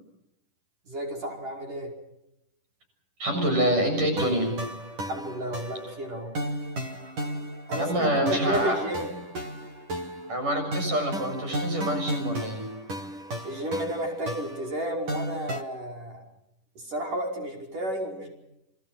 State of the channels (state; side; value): late; left; 10 ms